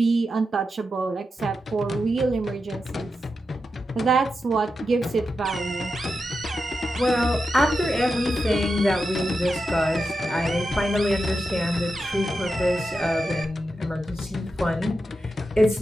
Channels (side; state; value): both; normal; correlation 0.89